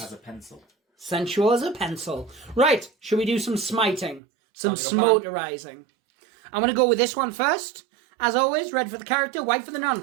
As a pencil. sensual as a pencil. Right, should we do some smiting? Some Sounds like a plan. smoterizing. I'm going to go with this one first. As always, red for the character, white for the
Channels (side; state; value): left; drops out; at 4.2 s